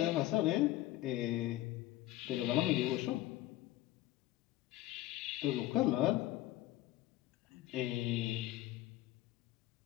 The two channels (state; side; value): quieter; right; 15.7 dB